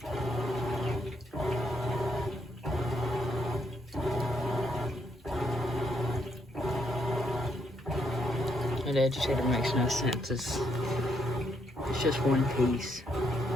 And the agitator makes no sense. It's just one piece.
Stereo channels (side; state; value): both; normal; correlation 0.75